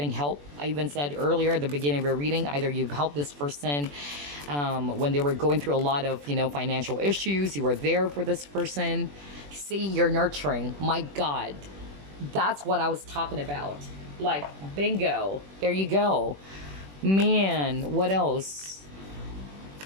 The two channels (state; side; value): late; left; 21 ms